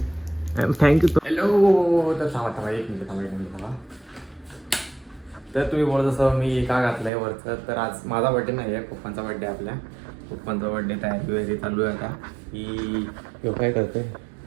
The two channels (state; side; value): drops out; left; at 7.1 s